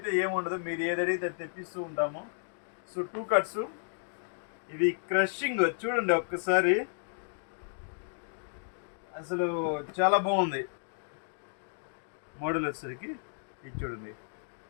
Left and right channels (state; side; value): silent; right; digital silence